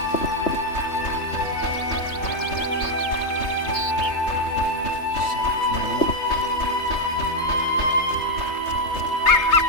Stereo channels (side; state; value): right; late; 3.3 ms